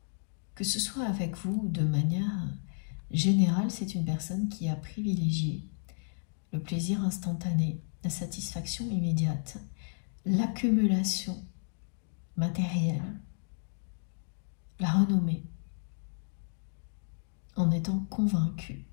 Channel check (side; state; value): right; silent; digital silence